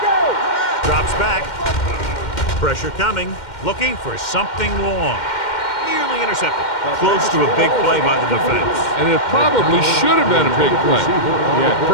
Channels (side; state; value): right; late; 2.1 ms